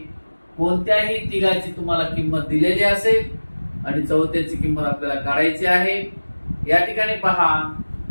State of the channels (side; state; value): both; inverted; correlation -1.00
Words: कोणत्याही तिघाची तुम्हाला किंमत दिलेली असेल आणि चौथ्याची किंमत आपल्याला काढायची आहे. या ठिकाणी पहा,